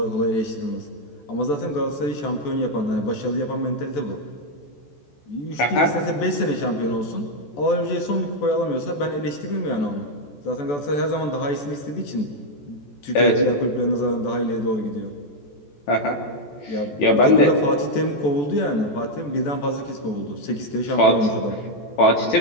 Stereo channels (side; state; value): right; late; 14 ms